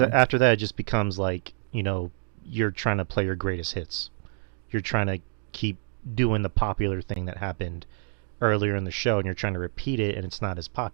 after that it just becomes like you're trying to play your greatest hits. You're trying to keep doing the popular thing that happened earlier in the show, and you're trying to repeat it, and it's not as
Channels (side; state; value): left; silent; digital silence